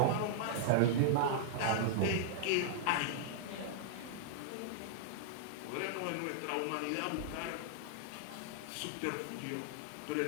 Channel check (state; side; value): different; both; correlation -0.01